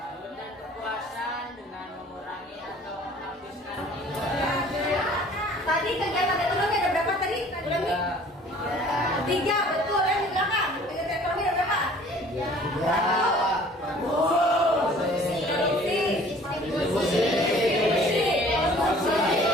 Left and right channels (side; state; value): both; normal; correlation 0.52